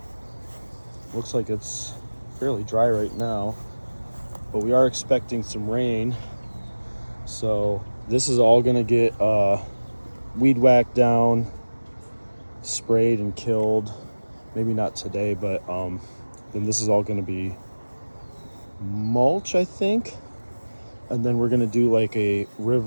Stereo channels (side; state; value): both; inverted; correlation -1.00